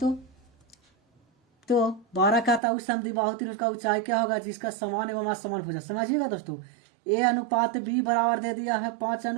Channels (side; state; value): left; drops out; at 2.6 s